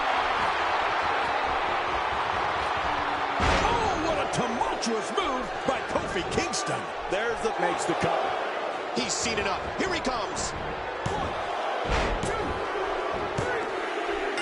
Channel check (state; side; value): identical; both; correlation 1.00